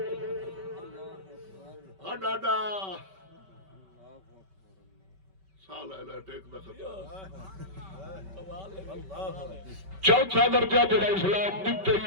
ڈاڈا سال ہے ٹیک دا خطا. چوتھا درجہ جڑا اسلام دیتے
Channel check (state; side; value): late; left; 5.2 ms